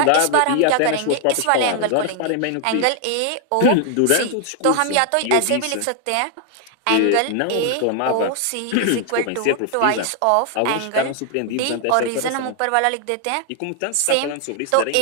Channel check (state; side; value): different; both; correlation 0.00